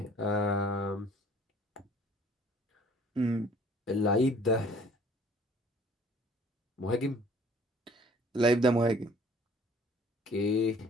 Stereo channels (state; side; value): normal; both; correlation 0.53